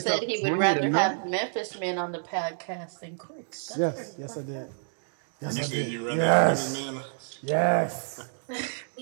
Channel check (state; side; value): silent; left; digital silence